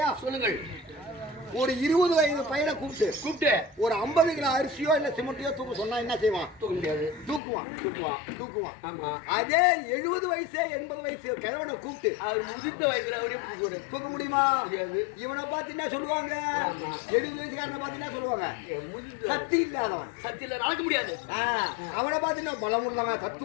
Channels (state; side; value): drops out; right; at 7.4 s